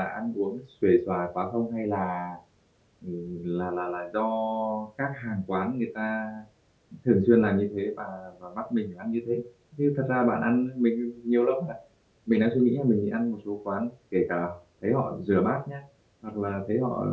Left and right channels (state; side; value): identical; both; correlation 1.00